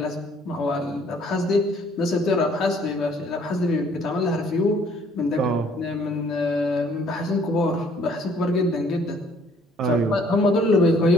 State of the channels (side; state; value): both; normal; correlation 0.60